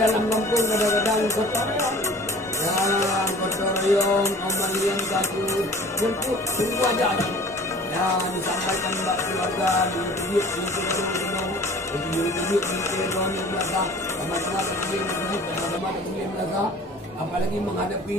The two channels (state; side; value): normal; both; correlation 0.46